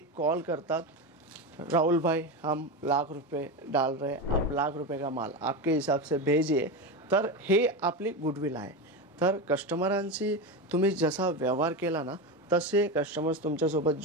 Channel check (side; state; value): both; normal; correlation 0.18